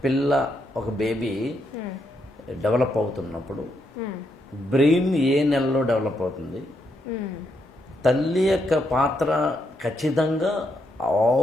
పిల్ల, ఒక బేబీ డెవలప్ అవుతున్నప్పుడు బ్రెయిన్ ఏ నెలలో డెవలప్ అవుతుంది, తల్లి యొక్క పాత్ర ఖచ్చితంగా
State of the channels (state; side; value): normal; both; correlation 0.79